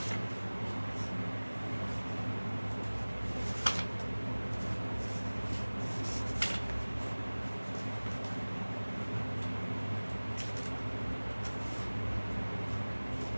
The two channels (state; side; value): inverted; both; correlation -1.00